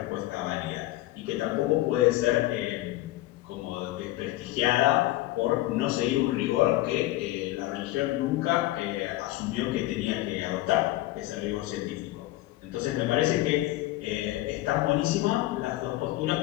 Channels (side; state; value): right; quieter; 16.9 dB